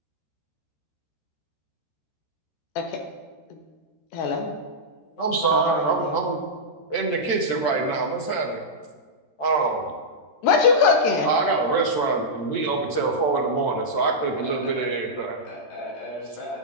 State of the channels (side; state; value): right; late; 13 ms